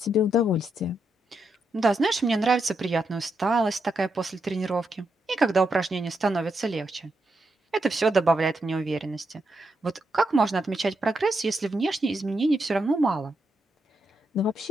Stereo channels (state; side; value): normal; both; correlation 0.82